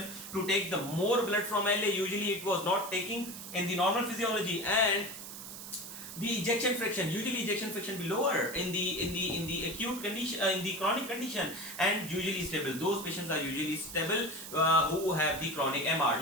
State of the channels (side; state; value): right; noise; hiss, 11 dB below the sound